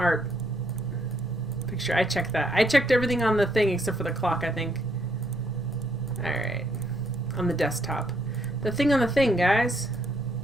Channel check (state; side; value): normal; both; correlation 0.71